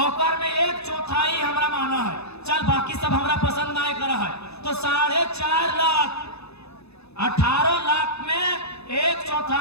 ओकर में 1/4 हमरा माना है, चल बाकी सब हमरा पसंद नहीं करा है, तो 4.5 लाख, 18 लाख में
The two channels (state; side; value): late; right; 0.79 ms